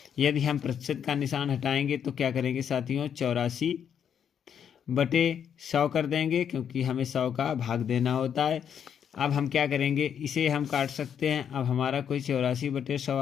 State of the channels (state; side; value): quieter; right; 8.3 dB